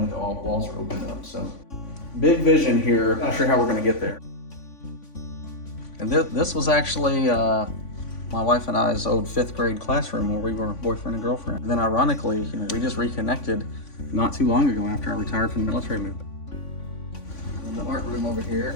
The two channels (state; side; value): late; right; 3.5 ms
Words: with all walls are opened up. So big vision here. Not sure how we're going to get there. And this was actually my wife and I's old 5th grade classroom where we were boyfriend and girlfriend. And then ironically, we just reconnected not too long ago after I retired from the military movement. And the art room over